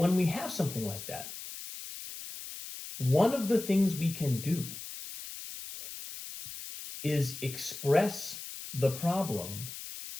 we have something like that, one of the things we can do is express the problem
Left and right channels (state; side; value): noise; left; hiss, 10 dB below the sound